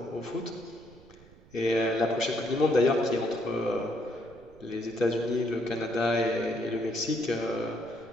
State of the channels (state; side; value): noise; right; rumble, 24 dB below the sound